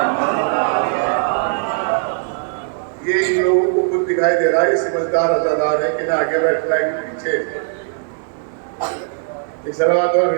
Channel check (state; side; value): silent; left; 67 dB below the other